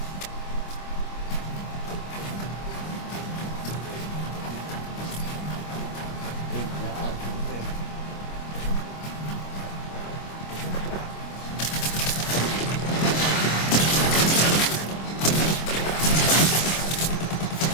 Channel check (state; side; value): late; right; 25 ms